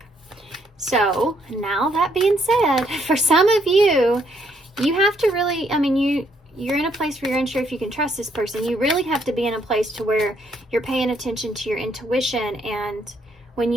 So, now that being said, for some of you, you have to really, you're in a place where you're unsure if you can trust this person. You really have to be in a place to where you're paying attention to your intuition, and when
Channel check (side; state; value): both; normal; correlation 0.71